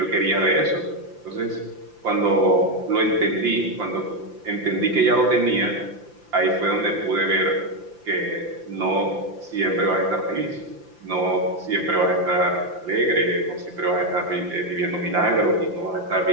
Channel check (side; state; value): left; late; 5.8 ms